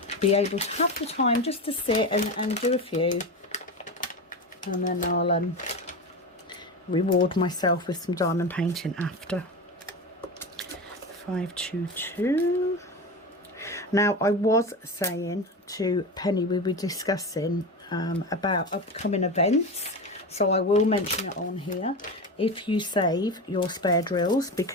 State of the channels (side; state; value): both; normal; correlation 0.23